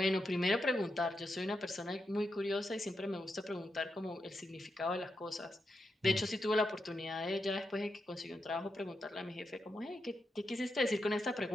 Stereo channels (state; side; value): normal; both; correlation 0.86